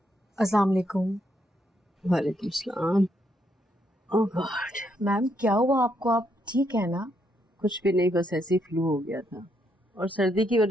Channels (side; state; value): both; normal; correlation 0.76